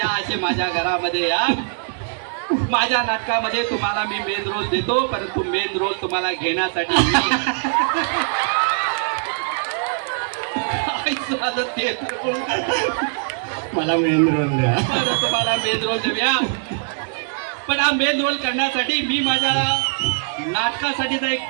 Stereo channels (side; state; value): left; silent; digital silence